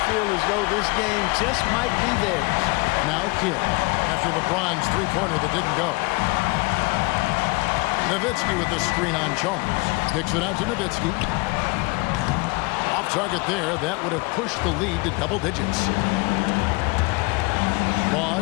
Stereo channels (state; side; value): quieter; right; 26.9 dB